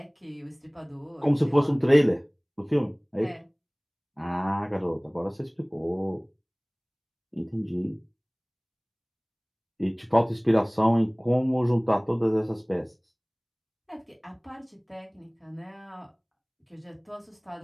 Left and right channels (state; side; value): identical; both; correlation 1.00